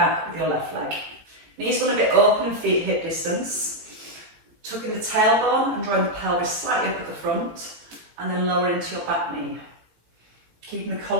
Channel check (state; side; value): late; left; 18 ms